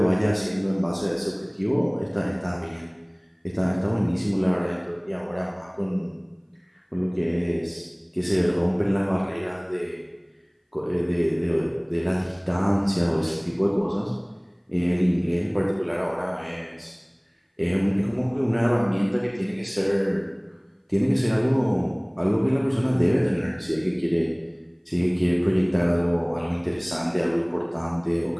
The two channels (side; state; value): both; identical; correlation 1.00